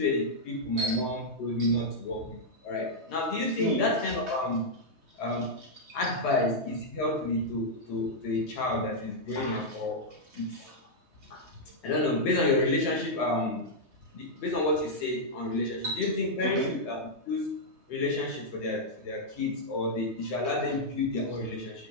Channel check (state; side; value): late; left; 3.2 ms